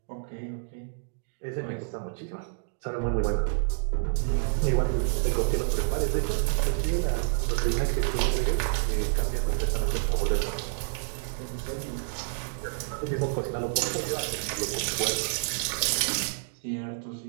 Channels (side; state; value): left; silent; digital silence